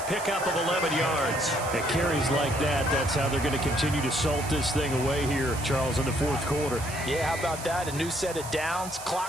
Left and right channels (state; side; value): noise; right; hiss, 11 dB below the sound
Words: of 11 yards. At carries like that, that's how they're going to continue to salt this thing away here, Charles, in the 4th quarter. Yeah, how about that? A new set of downs.